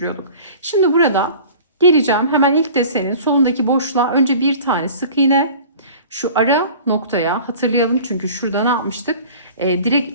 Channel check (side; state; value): both; inverted; correlation -0.43